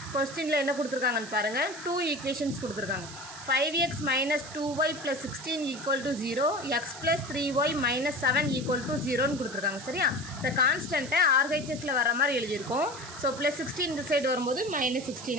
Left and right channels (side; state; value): right; noise; hiss, 13 dB below the sound